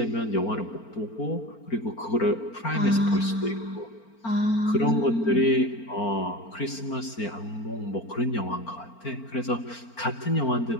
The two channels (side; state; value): right; late; 4.4 ms